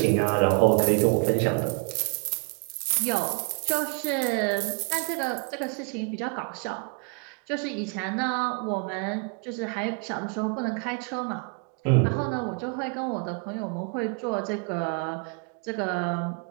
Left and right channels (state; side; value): quieter; left; 35.6 dB